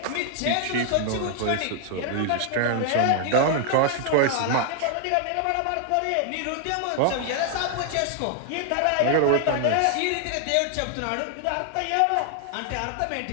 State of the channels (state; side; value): different; both; correlation 0.00